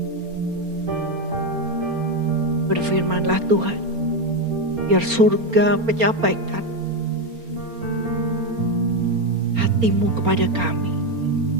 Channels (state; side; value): late; left; 4.3 ms